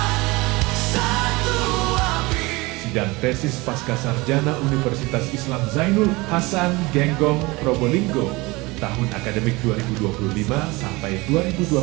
satu api. Sidang tesis pasca sarjana Universitas Islam Zainul Hasan Genggong Probolinggo tahun akademik 2025 sampai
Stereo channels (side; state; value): left; quieter; 23.1 dB